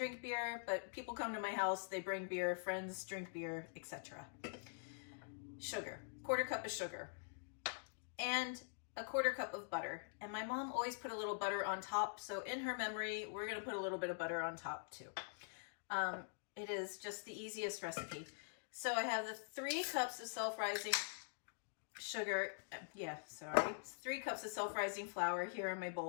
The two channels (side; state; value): right; silent; digital silence